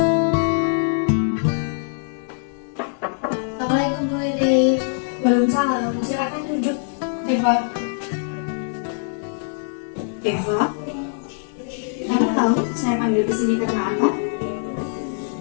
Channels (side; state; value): right; silent; digital silence